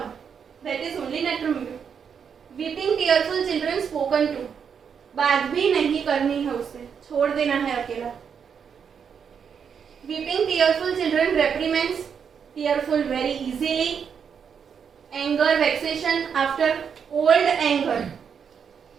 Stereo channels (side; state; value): left; quieter; 7.0 dB